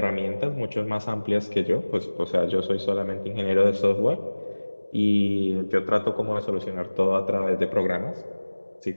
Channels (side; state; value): both; inverted; correlation -1.00